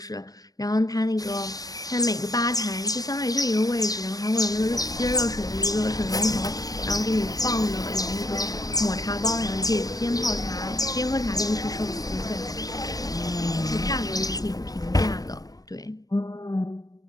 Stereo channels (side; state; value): right; late; 0.18 ms